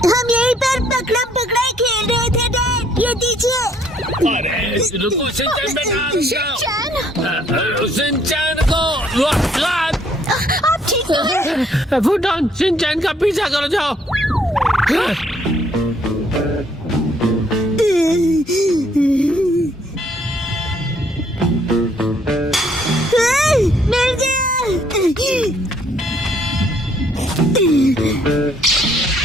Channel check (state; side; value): normal; both; correlation 0.66